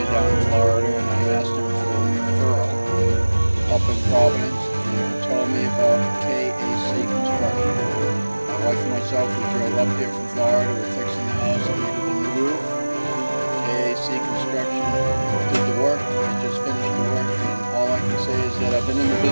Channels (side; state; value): both; inverted; correlation -1.00